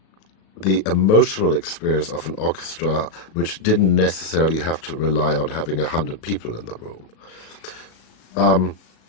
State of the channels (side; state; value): right; late; 37 ms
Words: the emotional experience of an orchestra, which didn't necessarily have to rely on having 100 people in the room.